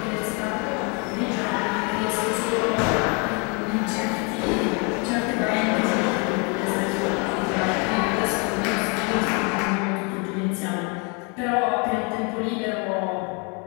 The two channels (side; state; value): right; quieter; 33.6 dB